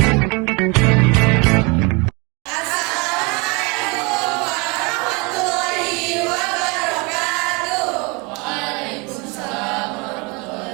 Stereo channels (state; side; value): quieter; left; 29.0 dB